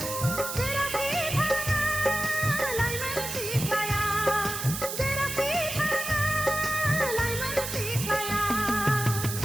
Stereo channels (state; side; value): noise; right; hiss, 5 dB below the sound